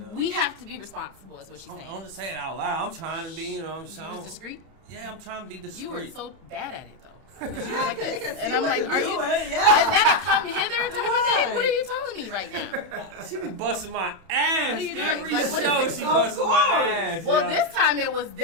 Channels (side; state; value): left; late; 31 ms